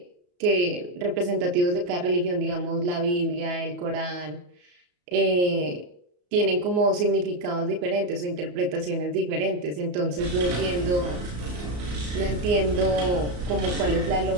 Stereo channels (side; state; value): left; late; 34 ms